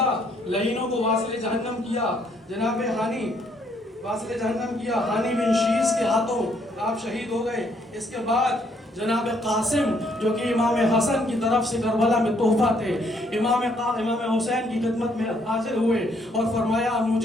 لعینوں کو واصل جہنم کیا. جناب ہانی واصل جہنم کیا. ہانی بن شیس کے ہاتھوں آپ شہید ہو گئے. اس کے بعد جناب قاسم جو کہ امام حسن کی طرف سے کربلا میں تحفہ تھے، امام حسین کی خدمت میں حاضر ہوئے اور فرمایا امو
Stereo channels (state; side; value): normal; both; correlation 0.69